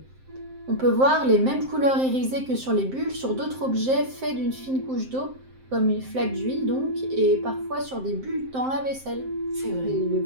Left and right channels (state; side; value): late; left; 7.6 ms